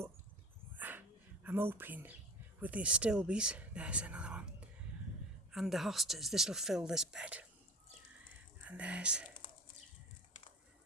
I'm hoping with the astilbes, there's another one, and the hostas, this will fill this bed. And there's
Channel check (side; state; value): both; normal; correlation 0.33